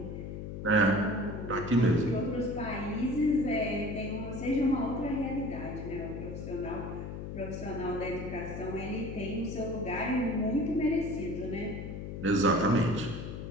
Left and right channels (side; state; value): left; noise; hum, 7 dB below the sound